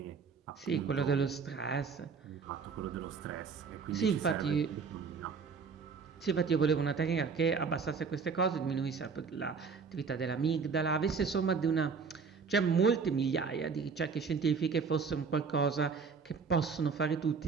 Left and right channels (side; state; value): left; quieter; 5.4 dB